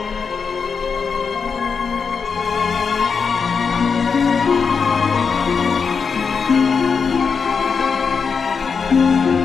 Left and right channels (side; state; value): right; quieter; 5.7 dB